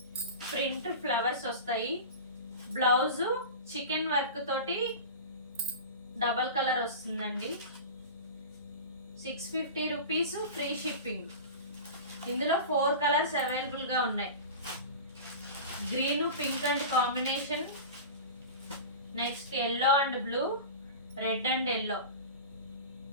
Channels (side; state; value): both; inverted; correlation -0.31